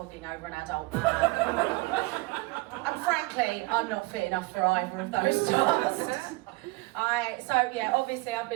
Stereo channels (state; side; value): quieter; left; 23.5 dB